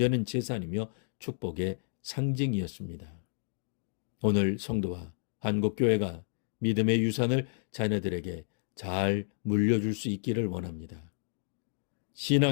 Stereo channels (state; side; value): silent; right; 57 dB below the other